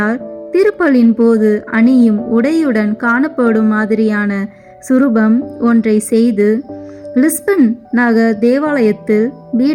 திருப்பலின் போது அணியும் உடையுடன் காணப்படும் மாதிரியான சுரூபம் ஒன்றை செய்து லிஸ்பன் நகர் தேவாலயத்தில்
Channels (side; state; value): both; identical; correlation 1.00